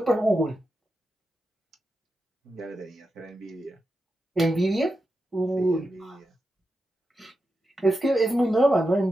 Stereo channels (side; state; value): both; normal; correlation 0.89